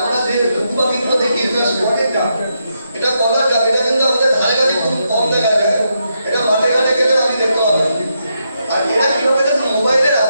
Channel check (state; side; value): inverted; both; correlation -0.81